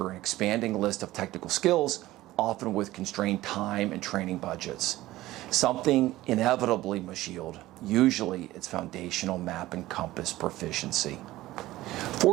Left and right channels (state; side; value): quieter; left; 16.6 dB